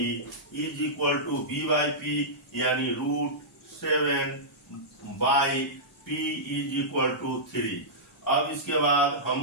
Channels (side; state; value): both; normal; correlation -0.15